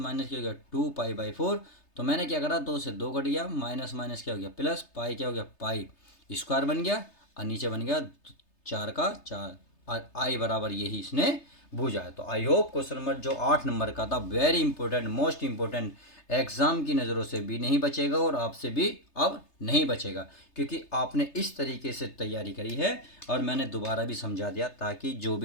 क्या हो गया टू पाई बाई फोर। तो मैंने क्या करा दो से दो कट गया, माइनस माइनस क्या हो गया प्लस, पाई क्या हो गया पाई स्क्वायर बन गया और नीचे बन गया चार का चार और आई बराबर यही इसने बूझा है। तो आई होप क्वेश्चन नंबर जो 8 नंबर का था very important most important, exam की नज़रों से भी नहीं बचेगा और आपसे भी अब नहीं बचेगा, क्योंकि आपने इस तरीके से तैयारी करी है और मैंने दोबारा भी समझा दिया ताकि जो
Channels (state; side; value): late; right; 3.3 ms